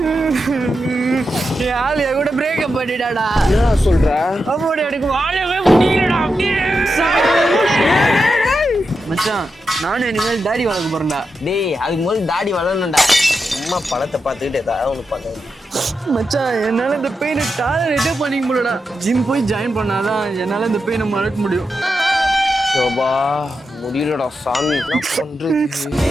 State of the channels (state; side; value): normal; both; correlation 0.88